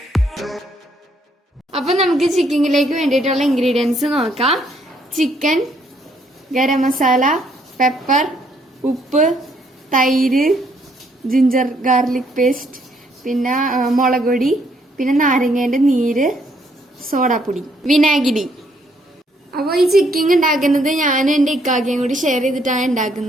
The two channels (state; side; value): normal; both; correlation 0.69